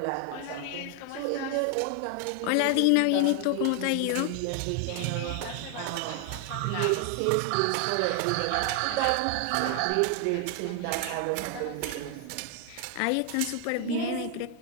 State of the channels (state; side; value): different; both; correlation 0.00